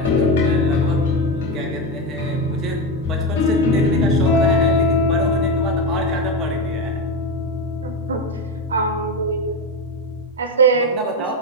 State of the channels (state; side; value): normal; both; correlation 0.14